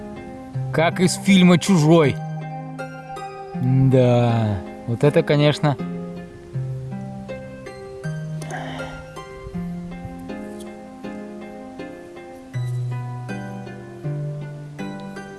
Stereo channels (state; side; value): identical; both; correlation 1.00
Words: Как из фильма «Чужой». Да, вот это, конечно...